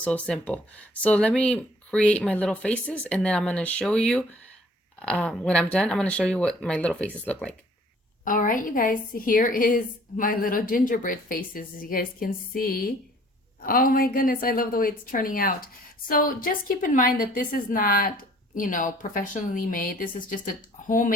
So let me create my little faces, and then I'm going to show you, when I'm done, I'm going to show you what my little faces look like. All right, you guys, here is my little gingerbread faces, as you guys can see. Oh my goodness, I love the way it's turning out. So just keep in mind that this is not, you know, professionally made. This is just a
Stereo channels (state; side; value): normal; both; correlation 0.56